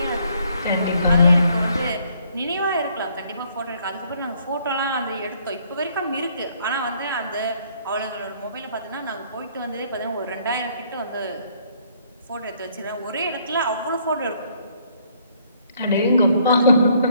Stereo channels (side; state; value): both; inverted; correlation -0.65